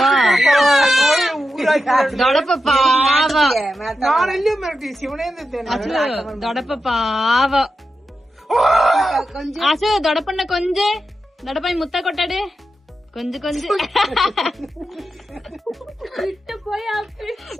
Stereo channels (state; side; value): normal; both; correlation 0.90